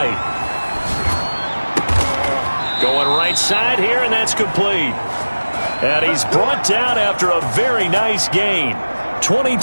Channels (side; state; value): both; inverted; correlation -1.00